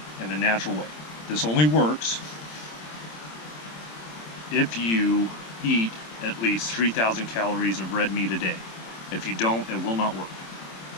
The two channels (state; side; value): late; right; 26 ms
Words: in a natural way. This only works if you eat at least 3,000 calories of red meat a day. If you don't, it will not work.